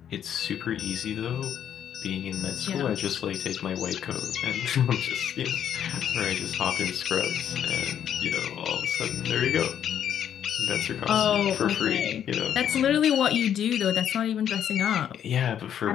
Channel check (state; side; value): quieter; right; 9.5 dB